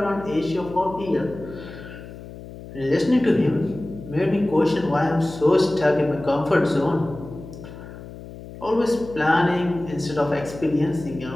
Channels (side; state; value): left; noise; hum, 14 dB below the sound